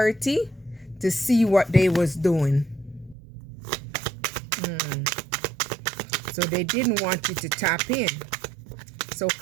to see what they was doing. So they didn't want you to tap in. So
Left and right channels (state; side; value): drops out; left; at 3.2 s